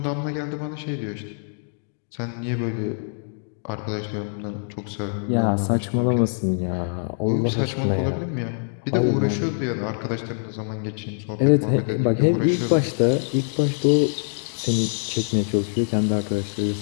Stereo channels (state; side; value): silent; right; 59 dB below the other